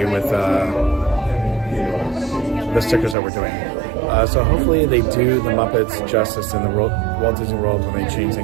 with the stickers that we're doing. So hopefully they do the Muppets justice in the Walt Disney World when they change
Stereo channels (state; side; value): drops out; left; at 3.2 s